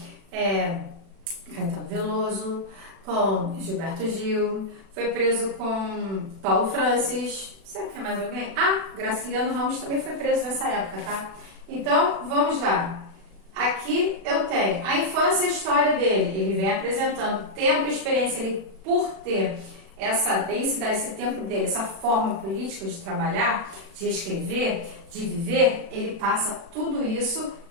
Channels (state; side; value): late; left; 36 ms